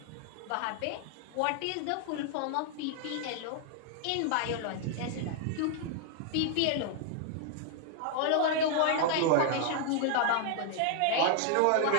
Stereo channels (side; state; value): both; different; correlation 0.00